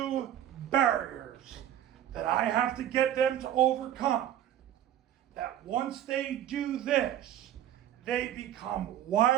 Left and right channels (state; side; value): quieter; left; 11.4 dB